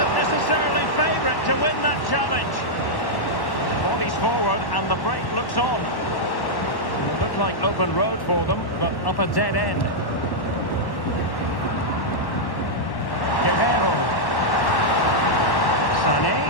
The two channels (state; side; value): late; right; 1.1 ms